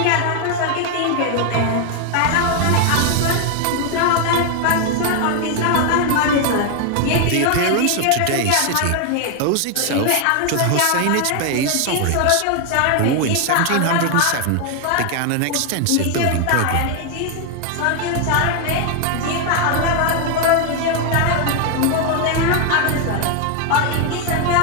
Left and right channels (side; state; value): both; different; correlation 0.01